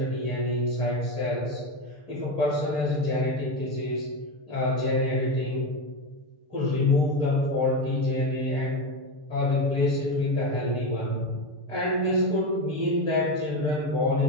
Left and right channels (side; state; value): left; late; 6.8 ms